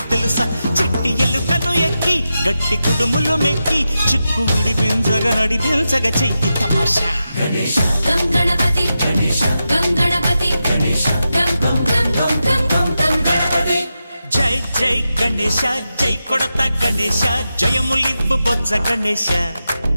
తెలుసా చిట్టి ఎలుకను ఎక్కి గట్టి కుడుములు మెక్కి చిక్కు విడిపించగా నడిపించగా చెయ్యి తమాషా గం గణపతి గం గణపతి గం గం గం గం గం గం గణపతి జై జై గణేశ జై కొడత గణేశ జయములివ్వు బొజ్జ గణేశ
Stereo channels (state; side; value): inverted; both; correlation -0.90